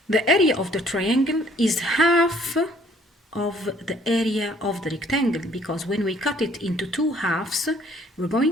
the area of the triangle is half of the area of the rectangle, because when we cut it into two halves, we're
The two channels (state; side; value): normal; both; correlation 0.60